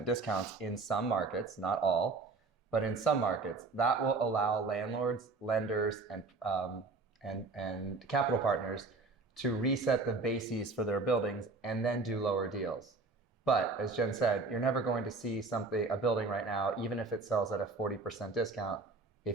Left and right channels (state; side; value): quieter; left; 3.8 dB